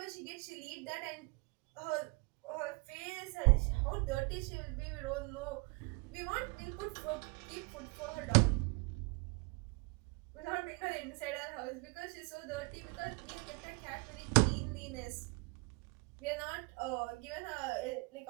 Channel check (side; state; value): left; quieter; 28.6 dB